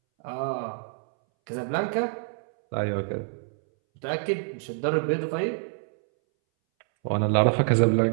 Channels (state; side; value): silent; left; 60 dB below the other